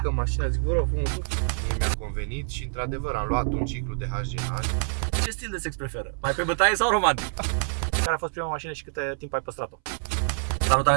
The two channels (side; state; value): left; silent; 61 dB below the other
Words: mașina, zic, vă rog frumos, mi-a convenit și într-adevăr am luat un ciclu de HGH. Ce stil de sex preferă? Mai pe bătaie sau romantic? Care a fost prima mașină și câte timp ai păstrat-o? Salutare,